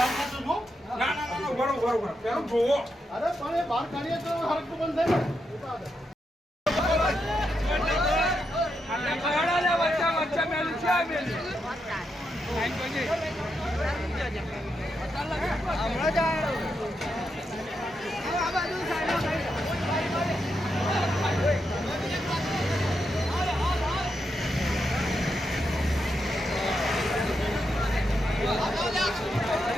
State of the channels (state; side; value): normal; both; correlation 0.83